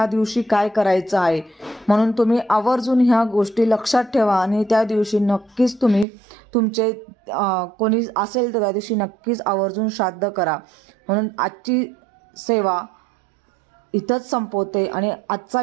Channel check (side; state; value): left; drops out; at 6.1 s